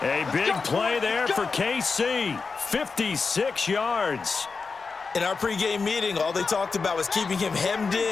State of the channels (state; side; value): quieter; right; 4.7 dB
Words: A big play there for KC. 56 yards. In our pregame meeting, all they talked about was keeping him hemmed